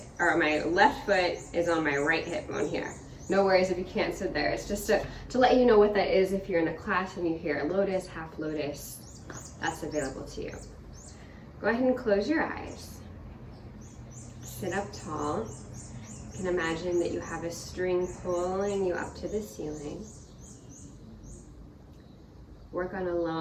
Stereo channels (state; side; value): identical; both; correlation 1.00